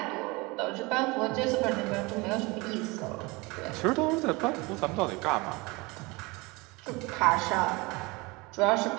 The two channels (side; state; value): left; quieter; 25.1 dB